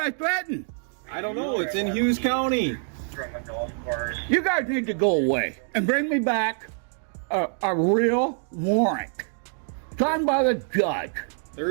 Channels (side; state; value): left; silent; 61 dB below the other